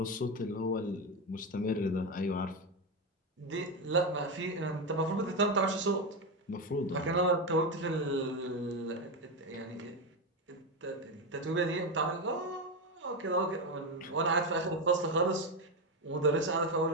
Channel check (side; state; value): both; normal; correlation 0.12